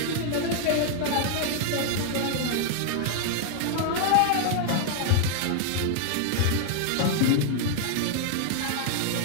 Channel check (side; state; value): both; different; correlation 0.00